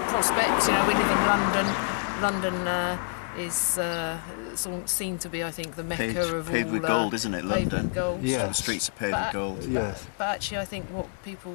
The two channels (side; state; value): right; silent; 60 dB below the other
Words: of prospects. We live in London. London is seen to be, I think, the mecca of all. Paved with gold, isn't it? Paved London. With gold. Yeah. The streets are paved with gold. Yes. But actually, I think what